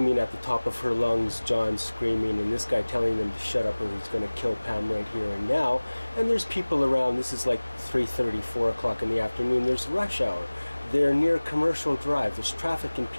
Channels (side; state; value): both; inverted; correlation -1.00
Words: at the top of her lungs, John screaming, and this guy telling them to shut up or he's going to kill Pam right here and now. And there's people around. This is like 3:30, 4 o'clock in the afternoon. There's rush hour. They're near Commercial Drive. There's traffic and